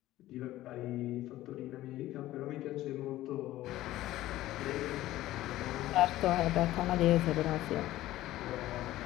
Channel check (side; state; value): right; quieter; 15.3 dB